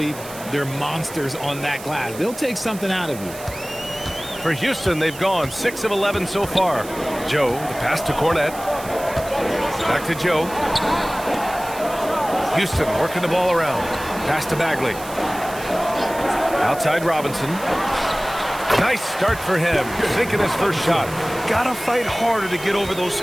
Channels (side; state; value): right; noise; hiss, 15 dB below the sound